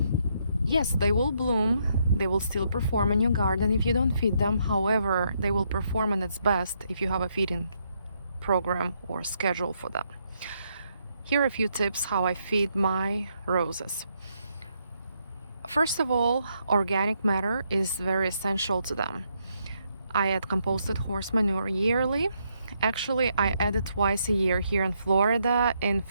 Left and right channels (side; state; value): both; inverted; correlation -0.76